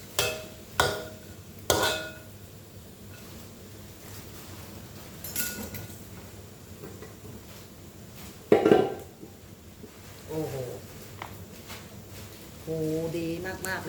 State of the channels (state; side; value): identical; both; correlation 1.00